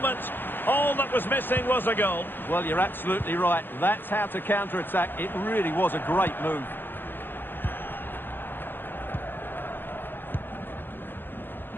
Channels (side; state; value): right; late; 0.098 ms